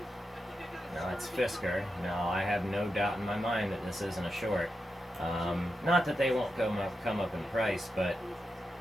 Now that's Fisker. Now I have no doubt in my mind that this isn't a short. Not that they won't come up in price, but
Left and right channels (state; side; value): normal; both; correlation 0.88